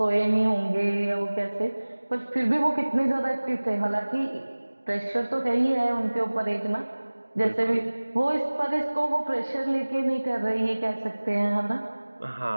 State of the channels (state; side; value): inverted; both; correlation -1.00